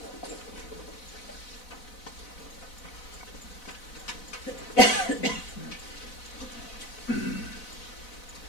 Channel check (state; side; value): late; right; 4.0 ms